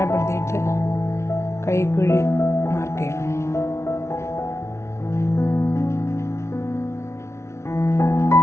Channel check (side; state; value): right; late; 0.13 ms